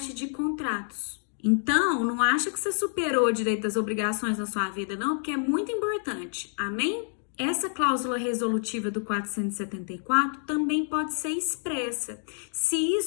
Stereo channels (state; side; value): silent; right; 59 dB below the other